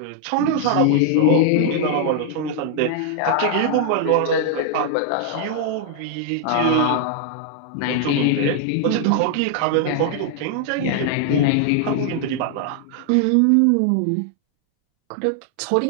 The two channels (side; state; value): both; different; correlation 0.00